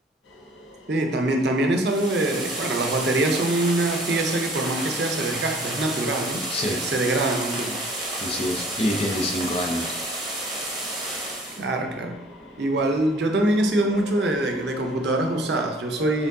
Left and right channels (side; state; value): both; normal; correlation 0.53